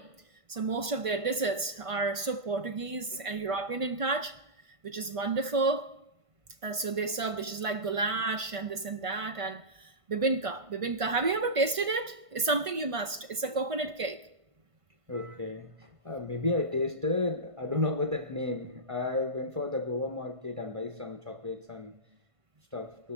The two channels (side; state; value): left; late; 1.5 ms